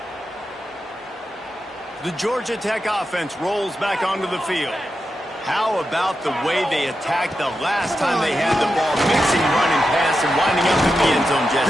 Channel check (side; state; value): both; normal; correlation 0.89